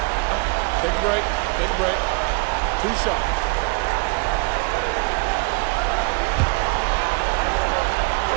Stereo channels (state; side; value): quieter; left; 30.1 dB